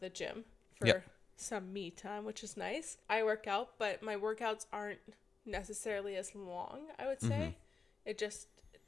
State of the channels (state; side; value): quieter; right; 4.9 dB